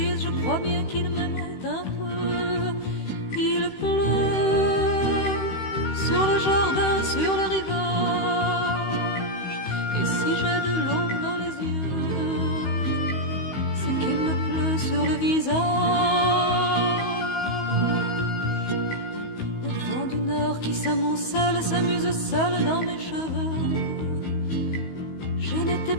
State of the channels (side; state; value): right; late; 16 ms